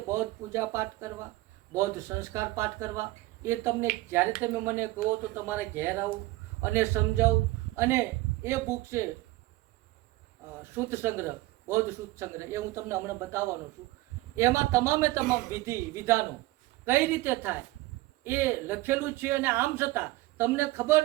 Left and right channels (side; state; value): left; quieter; 18.8 dB